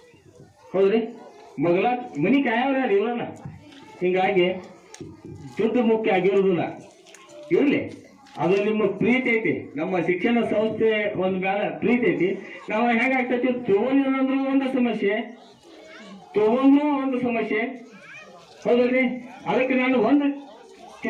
ಹೌದ್ರಿ, ಮಗಳ ಮನಿ ಕಾಯವ್ರ ಇರೋಲ್ಲ. ಹಿಂಗಾಗಿ ದುಡ್ಡು ಮುಖ್ಯ ಆಗಿರೋದಿಲ್ಲ, ಇರ್ಲಿ, ಅದು ನಿಮ್ಮ ಪ್ರೀತಿ ಐತಿ. ನಮ್ಮ ಶಿಕ್ಷಣ ಸಂಸ್ಥೆ ಒಂದ್ ಮೇಲೆ ಪ್ರೀತಿ ಐತಿ. ನಾವು ಹೆಂಗಾಗ್ತೈತಿ, ತಗೊಂಡ್ರು ಒಂದು ಸಮಸ್ಯೆ, ತಗೊಂಡ್ರು ಒಂದು ಸಮಸ್ಯೆ. ಹೌದಲ್ರಿ? ಅದಕ್ಕೆ ನಾನು ಒಂದು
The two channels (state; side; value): identical; both; correlation 1.00